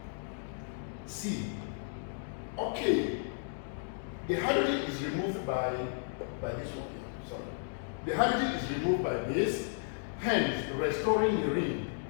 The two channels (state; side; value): silent; right; digital silence